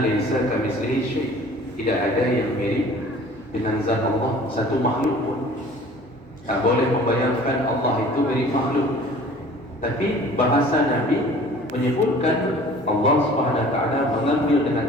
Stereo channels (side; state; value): both; normal; correlation 0.48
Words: laisa kamitslihi syai', tidak ada yang mirip dengan zat Allah satu makhluk pun. Tak boleh membayangkan Allah itu mirip makhluk. Tapi bahasa Nabi menyebutkan Allah Subhanahu Wa Taala mengambil